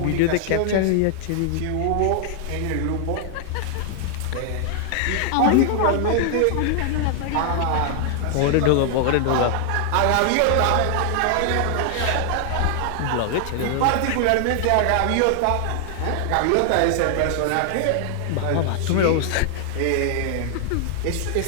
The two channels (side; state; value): both; different; correlation 0.00